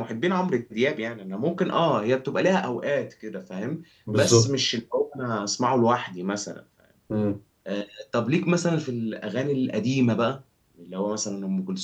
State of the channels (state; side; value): identical; both; correlation 1.00